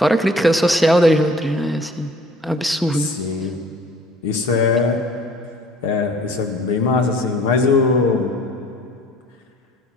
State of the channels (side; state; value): both; normal; correlation 0.52